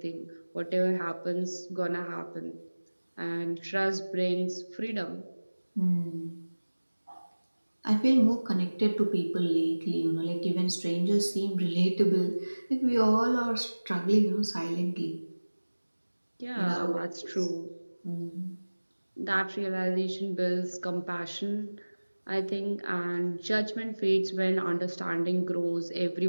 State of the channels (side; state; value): both; inverted; correlation -1.00